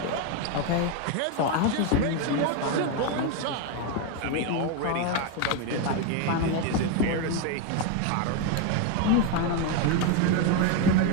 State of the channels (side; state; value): both; different; correlation 0.02